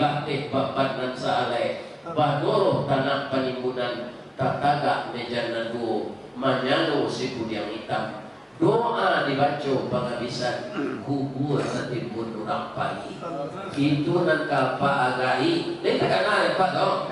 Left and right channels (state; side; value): identical; both; correlation 1.00